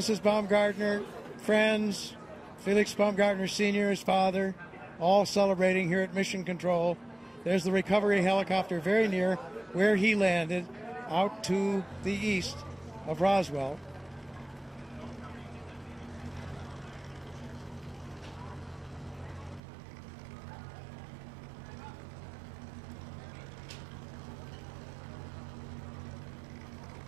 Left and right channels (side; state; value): left; drops out; at 19.6 s